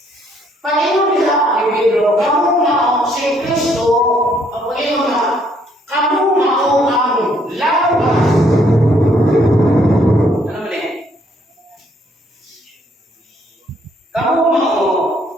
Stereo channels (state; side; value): normal; both; correlation 0.67